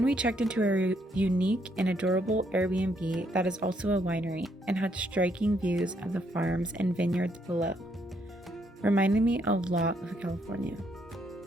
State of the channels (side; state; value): both; normal; correlation 0.72